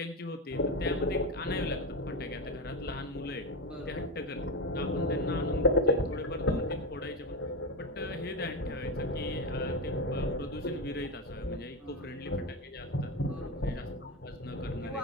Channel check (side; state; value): both; normal; correlation 0.16